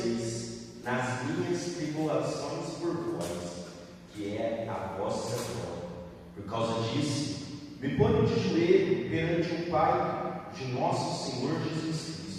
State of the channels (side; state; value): both; identical; correlation 1.00